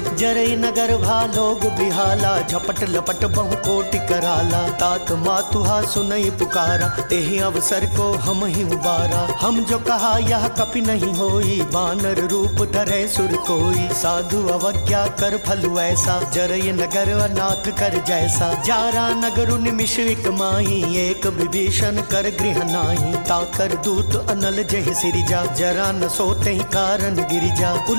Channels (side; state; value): both; inverted; correlation -1.00